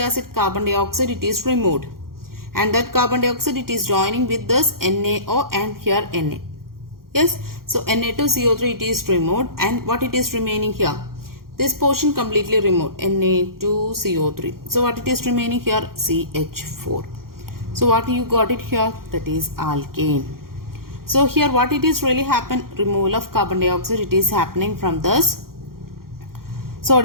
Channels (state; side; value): late; left; 0.92 ms